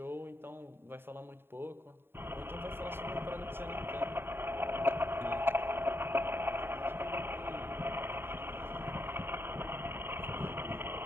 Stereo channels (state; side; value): late; left; 0.11 ms